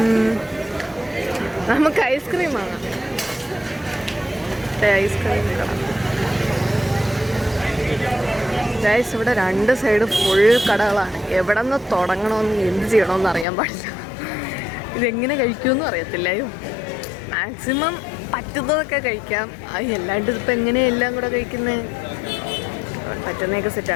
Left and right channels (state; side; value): drops out; right; at 13.5 s